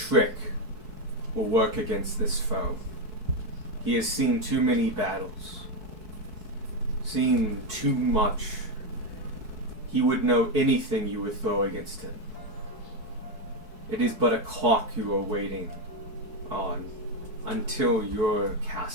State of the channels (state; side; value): late; left; 4.6 ms